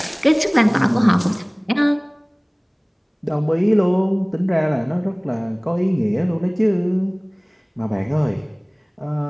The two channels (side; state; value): both; identical; correlation 1.00